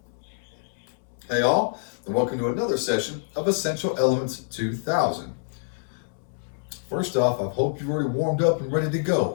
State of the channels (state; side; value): silent; right; 61 dB below the other